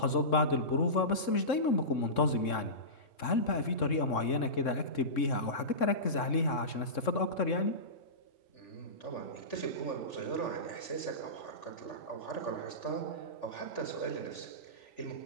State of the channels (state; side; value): late; right; 3.6 ms